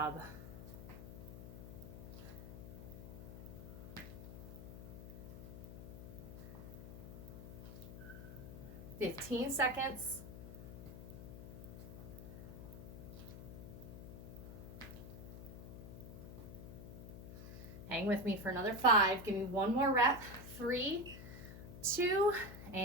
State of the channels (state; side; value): noise; left; hum, 11 dB below the sound